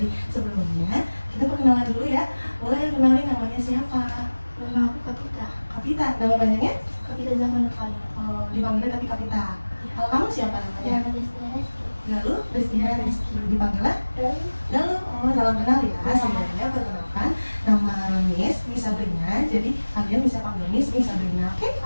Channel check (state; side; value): inverted; both; correlation -1.00